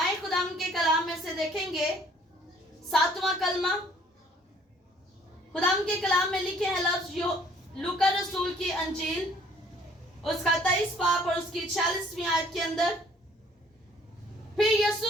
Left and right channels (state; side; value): normal; both; correlation 0.58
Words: खुदा के कलाम में से देखेंगे 7वां कलमा। खुदा के कलाम में लिखे हैं लफ्ज लूका रसूल की अंजील उसका 23 बाब और उसकी 46वीं आयत के अंदर, फिर